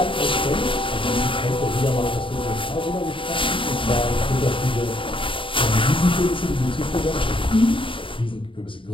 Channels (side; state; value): right; late; 0.25 ms